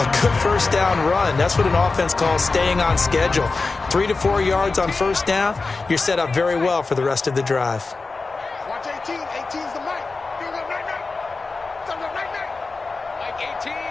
good first down run. That's what an offense calls staying on schedule. 3 to 4 yards on first down, you're set up very well for the rest of the drive. Watch 18. 18's the mic. You're the right night. Mike 18.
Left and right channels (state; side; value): quieter; right; 3.9 dB